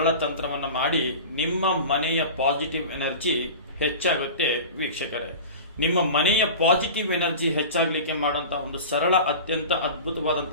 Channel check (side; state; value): both; inverted; correlation -0.34